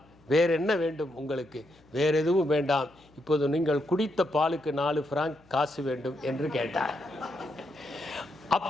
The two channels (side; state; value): left; noise; hum, 29 dB below the sound